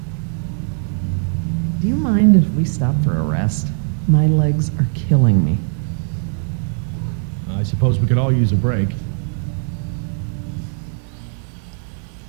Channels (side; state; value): left; silent; 59 dB below the other